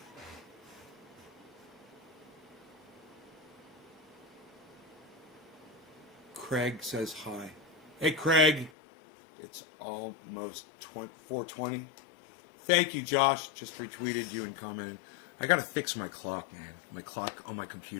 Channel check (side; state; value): right; drops out; at 8.7 s